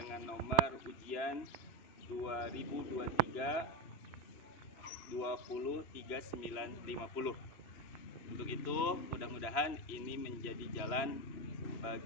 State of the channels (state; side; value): late; right; 3.0 ms